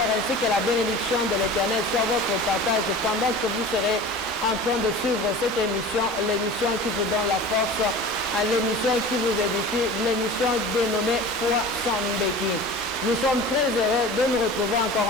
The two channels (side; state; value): both; normal; correlation 0.37